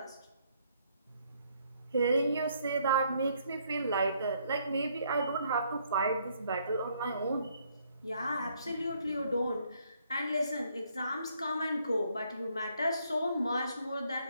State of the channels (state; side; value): inverted; both; correlation -0.69